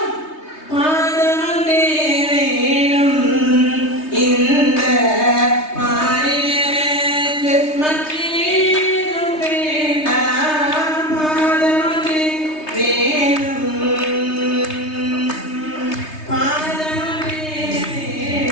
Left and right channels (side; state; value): right; late; 3.2 ms